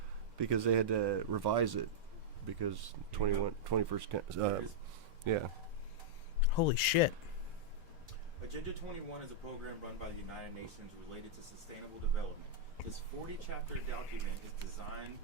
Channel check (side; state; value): both; normal; correlation -0.07